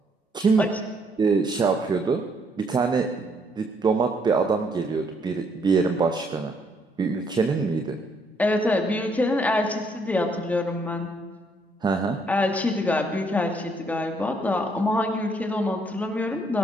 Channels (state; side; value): normal; both; correlation 0.69